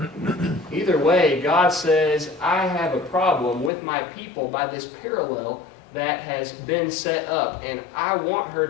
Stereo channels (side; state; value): right; drops out; at 3.7 s